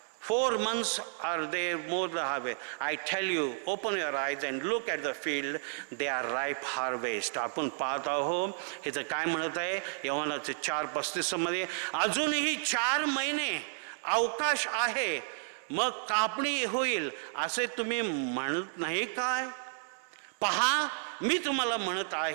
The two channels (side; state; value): left; silent; digital silence